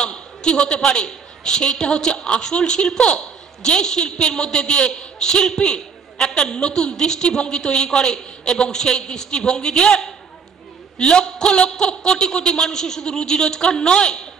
কি হতে পারে, সেইটা হচ্ছে আসল শিল্প। যে শিল্পের মধ্যে দিয়ে শিল্পী একটা নতুন দৃষ্টিভঙ্গি তৈরি করে এবং সেই দৃষ্টিভঙ্গি দিয়ে লক্ষ লক্ষ কোটি কোটি মানুষের শুধু রুজি রোজগার নয়,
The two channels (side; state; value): left; quieter; 5.8 dB